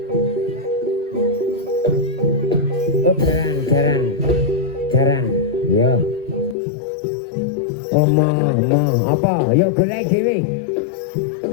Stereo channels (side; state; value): right; drops out; at 6.6 s